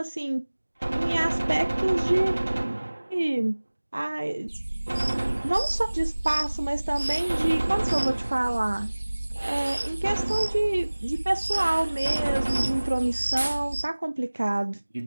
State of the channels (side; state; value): both; inverted; correlation -1.00